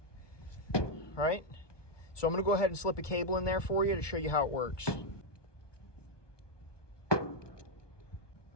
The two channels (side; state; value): right; late; 1.2 ms